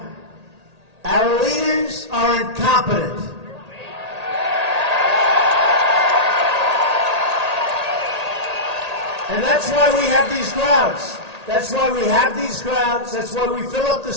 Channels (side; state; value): left; late; 1.8 ms